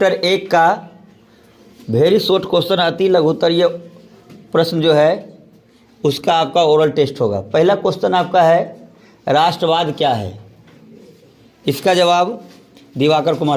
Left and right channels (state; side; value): identical; both; correlation 1.00